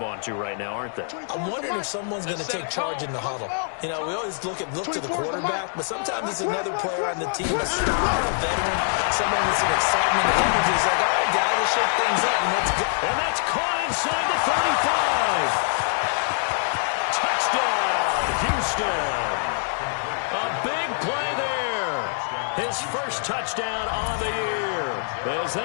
onto right now, aren't they? I'm wondering if someone's going to take charge in the huddle. You know, we always look to the quarterback, but sometimes it's another player on the team, a star, a veteran, someone with some excitement and energy. It's like, all right, guys, let's shake things up and let's go. And that's caught inside the 35. Touchdown, Houston. A big play there. His first touchdown on the year. As they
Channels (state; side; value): silent; right; 62 dB below the other